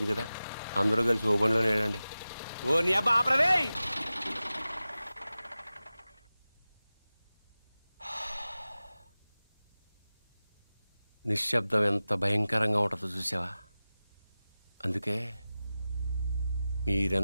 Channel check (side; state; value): both; inverted; correlation -0.96